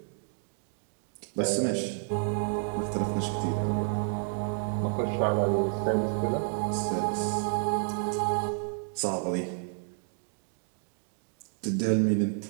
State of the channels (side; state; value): left; silent; 58 dB below the other